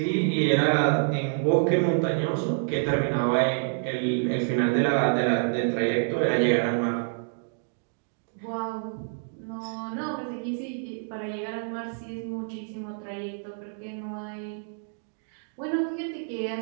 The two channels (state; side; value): silent; left; digital silence